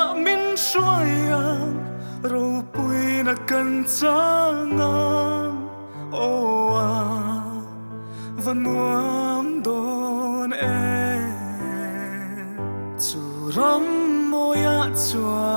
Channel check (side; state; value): both; inverted; correlation -1.00